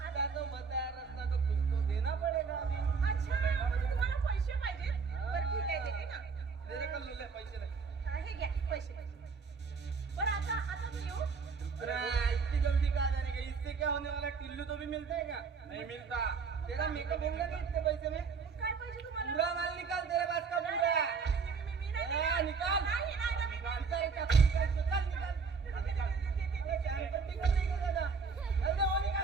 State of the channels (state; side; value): quieter; left; 5.2 dB